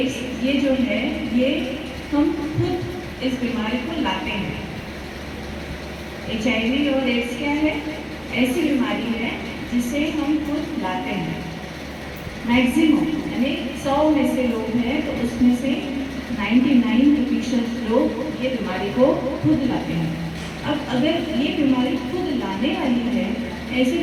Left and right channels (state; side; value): identical; both; correlation 1.00